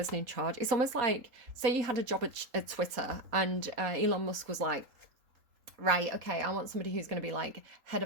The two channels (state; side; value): late; left; 3.8 ms